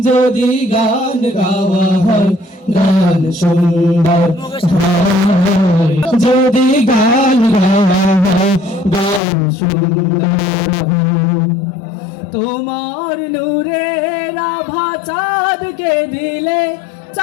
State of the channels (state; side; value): drops out; right; at 9.2 s